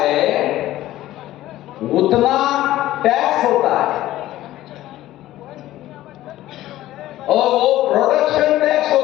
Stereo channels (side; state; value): right; quieter; 14.9 dB